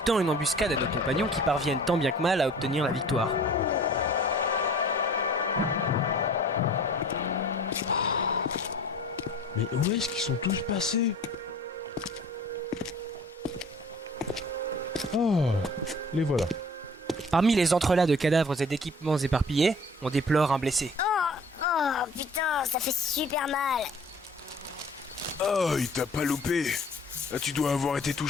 une embuscade à nos compagnons qui parviennent tant bien que mal à obtenir la victoire. Mais où est-ce qu'ils sont tous passés? Oh, les voilà. Parmi les entrelacs de cadavres et d'équipements éparpillés, on déplore un blessé. Oh, putain, ça fait super mal. Oh, il t'a pas loupé. Ah, tu dois avoir été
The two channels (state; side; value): normal; both; correlation 0.47